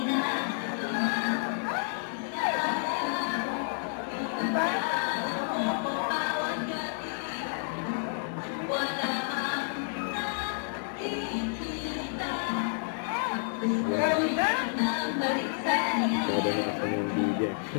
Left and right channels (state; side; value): silent; right; digital silence